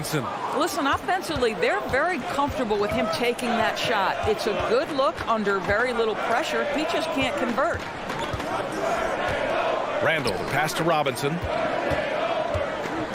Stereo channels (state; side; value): identical; both; correlation 1.00